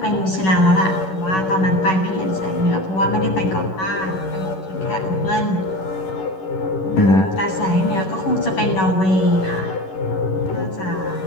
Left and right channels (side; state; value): right; late; 11 ms